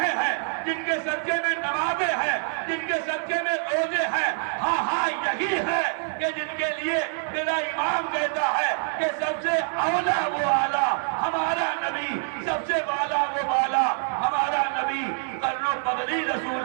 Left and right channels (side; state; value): left; silent; digital silence